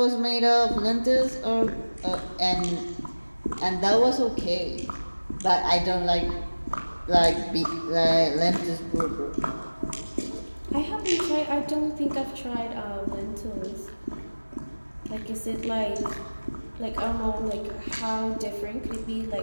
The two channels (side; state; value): both; inverted; correlation -1.00